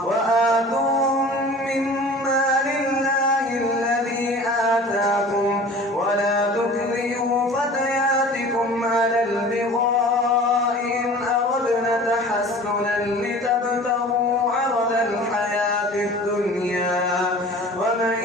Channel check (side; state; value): both; normal; correlation 0.42